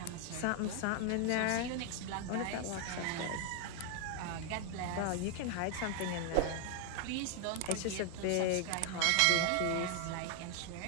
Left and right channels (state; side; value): different; both; correlation 0.00